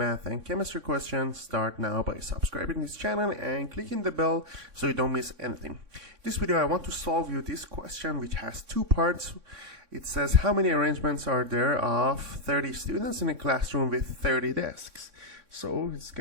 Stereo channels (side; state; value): left; late; 3.6 ms